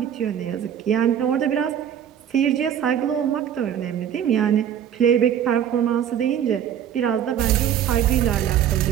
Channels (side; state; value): left; quieter; 9.6 dB